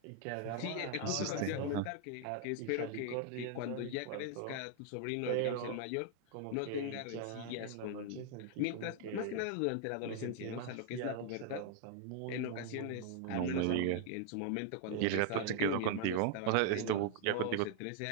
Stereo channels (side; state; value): both; different; correlation 0.00